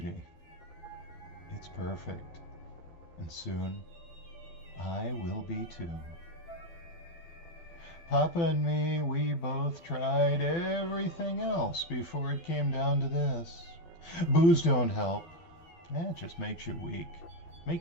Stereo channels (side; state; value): right; late; 12 ms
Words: It's perfect, and soon I will be too. Papa and me, we both tried everything else before it came down to this. Booze don't help. It just makes you weak.